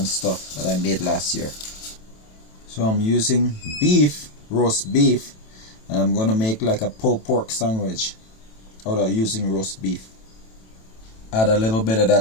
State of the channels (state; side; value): late; right; 27 ms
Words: stuff that I made last year. So I'm using beef, roast beef, and I'm gonna make like a pulled pork sandwich out of using roast beef. Add a little bit of